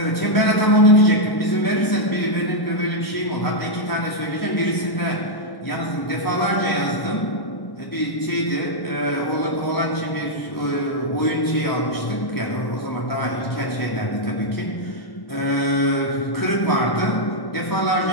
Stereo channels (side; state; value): right; late; 1.1 ms